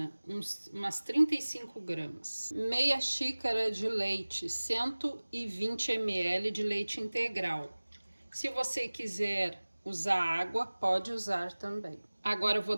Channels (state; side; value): inverted; both; correlation -1.00